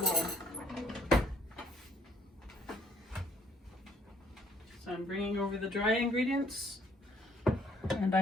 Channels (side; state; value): both; normal; correlation 0.64